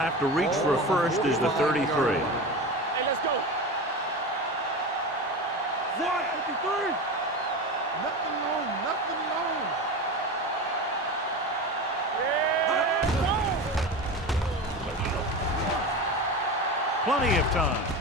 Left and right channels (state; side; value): normal; both; correlation 0.26